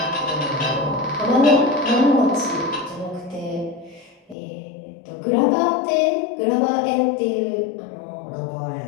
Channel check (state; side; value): drops out; right; at 4.4 s